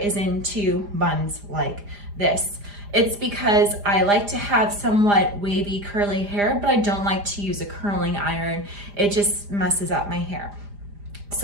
in two buns like this. It's because I like to have somewhat wavy, curly hair, but I don't like to use a curling iron. It just messes up my hair.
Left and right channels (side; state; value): left; late; 4.9 ms